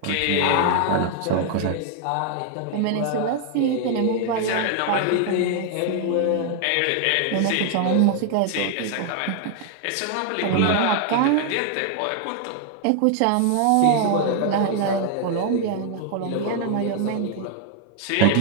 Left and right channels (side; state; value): both; different; correlation 0.00